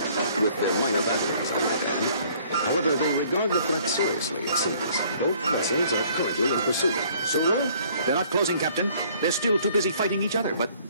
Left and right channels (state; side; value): inverted; both; correlation -0.58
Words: their minor batteries. However, they regard the threat seriously, it seems. Both vessels are currently in pursuit. Sulu? They're not closing, Captain. They're still too busy fighting each other, but